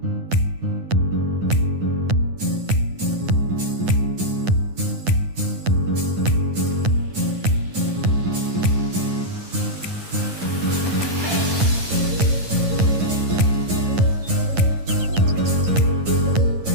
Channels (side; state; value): left; late; 9.7 ms